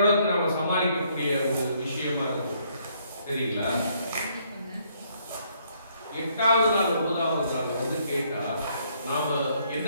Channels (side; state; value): both; inverted; correlation -0.69